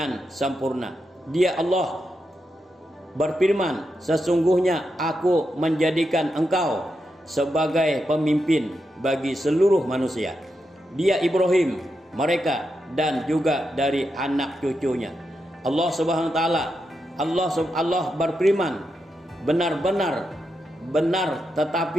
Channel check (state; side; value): normal; both; correlation 0.85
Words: sempurna. Dia Allah berfirman, sesungguhnya aku menjadikan engkau sebagai pemimpin bagi seluruh manusia. Dia Ibrahim, mereka dan juga dari anak cucunya. Allah Subhanahu wa taala, Allah berfirman, benar-benar benar,